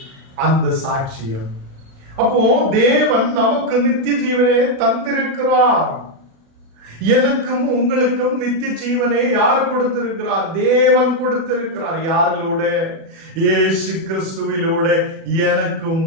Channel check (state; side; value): late; left; 37 ms